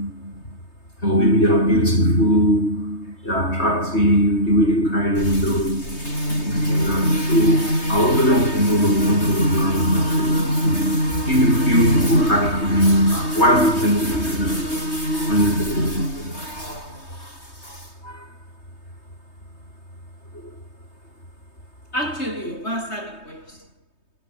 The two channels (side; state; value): right; late; 3.2 ms